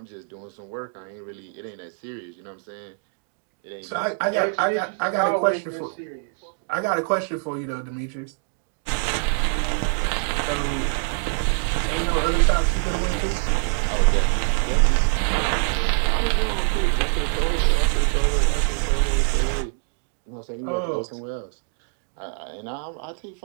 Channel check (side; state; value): left; silent; 62 dB below the other